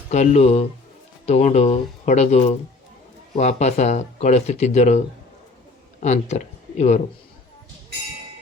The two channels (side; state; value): right; quieter; 3.4 dB